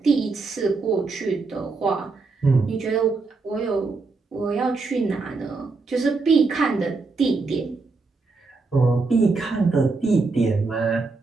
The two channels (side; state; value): left; quieter; 4.0 dB